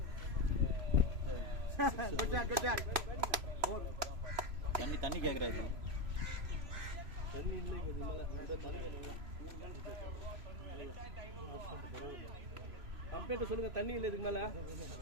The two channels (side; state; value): left; late; 3.0 ms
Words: தண்ணி கேட்கறாரு. தண்ணி இல்லைங்க, இது மேலே இந்த தண்ணி வேணுங்களா? கம்பெனிட்ட சொல்லுங்க, தண்ணி இல்லை இதுக்கு மேலே.